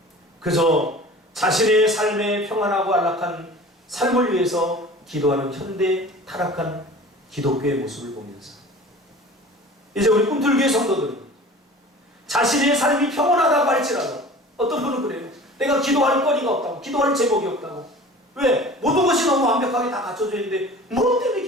그저 자신의 삶에 평안하고 안락한 삶을 위해서 기도하는 현대 타락한 기독교의 모습을 보면서 이제 우리 꿈틀교회 성도들은 자신의 삶이 평온하다고 할지라도 어떤 분은 그래요. 내가 기도할 거리가 없다고, 기도할 제목이 없다고. 왜? 모든 것이 너무 완벽하게 다 갖춰져 있는데 뭐 때문에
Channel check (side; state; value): both; normal; correlation 0.41